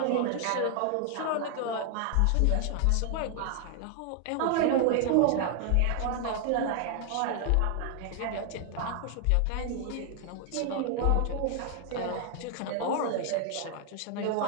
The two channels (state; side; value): different; both; correlation 0.00